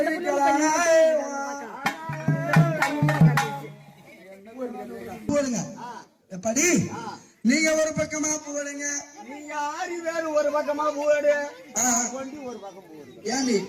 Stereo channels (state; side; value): identical; both; correlation 1.00